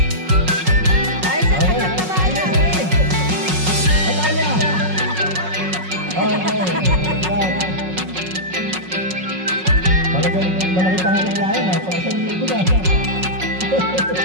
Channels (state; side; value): late; left; 5.4 ms